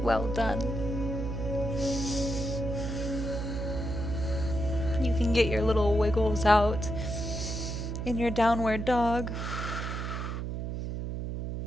Well done. You can get your little wiggles out in your downward dog.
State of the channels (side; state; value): right; noise; hum, 4 dB below the sound